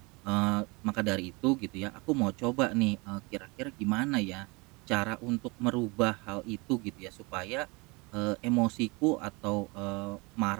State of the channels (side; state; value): left; quieter; 27.0 dB